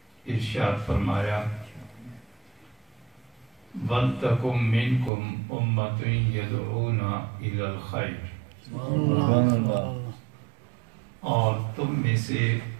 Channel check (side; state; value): left; drops out; at 5.1 s